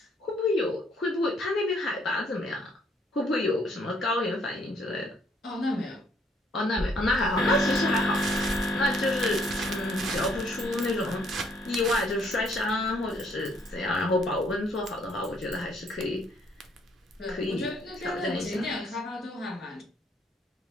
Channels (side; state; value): both; normal; correlation 0.66